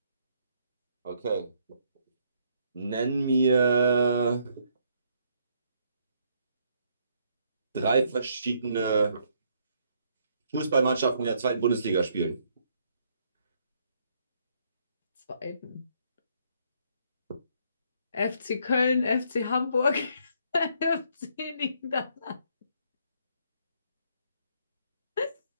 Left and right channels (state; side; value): inverted; both; correlation -0.70